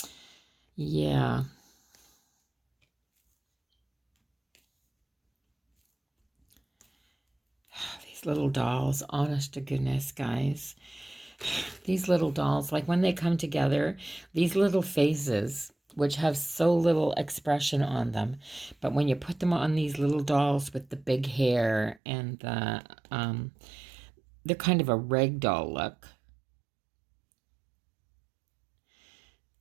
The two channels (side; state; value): left; drops out; at 22.0 s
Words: Yeah. These little dolls, honest to goodness, guys. These little dolls, like when they come together, these little faces, which have so little expression on them, but when you put them on these little dolls with the big hair and they're kind of a rag doll look.